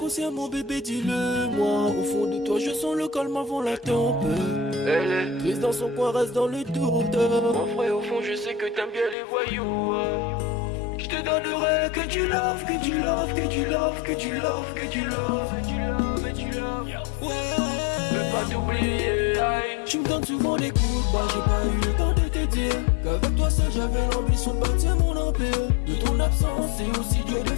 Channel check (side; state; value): right; drops out; at 9.2 s